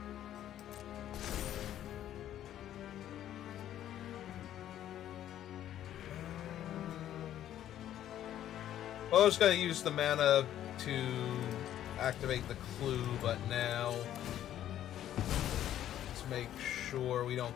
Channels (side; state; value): right; quieter; 11.6 dB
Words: Well, I was going to use the mana to activate the clue, but now let's make sure we don't